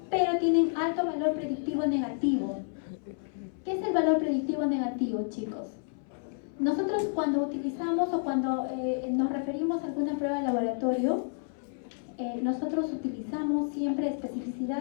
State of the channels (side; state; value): right; silent; 58 dB below the other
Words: pero tienen alto valor predictivo negativo. ¿Qué es el valor predictivo negativo, chicos? Nosotros cuando utilizamos o cuando nos referimos a alguna prueba de laboratorio, nosotros utilizamos siempre